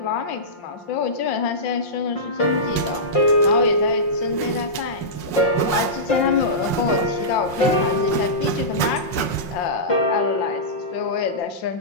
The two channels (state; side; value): late; right; 5.6 ms